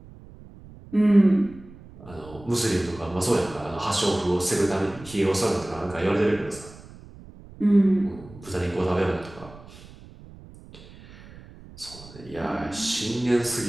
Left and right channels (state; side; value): noise; right; rumble, 19 dB below the sound